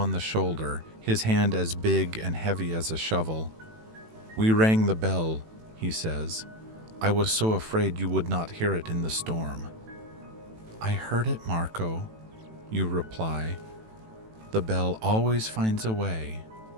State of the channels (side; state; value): left; late; 18 ms